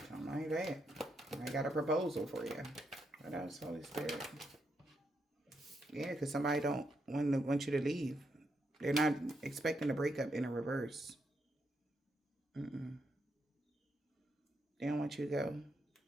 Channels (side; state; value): both; normal; correlation 0.80